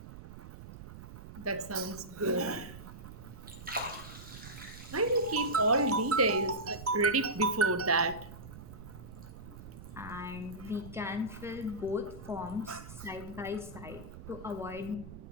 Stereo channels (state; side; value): noise; right; rumble, 14 dB below the sound